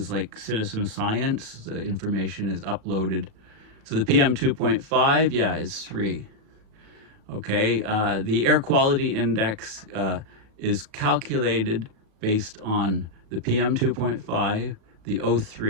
like citizen science. The information is uploaded. So the PM 2.5, yeah, is 3. Okay, the air quality index is calculated based on the PM 2.5, the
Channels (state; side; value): late; left; 37 ms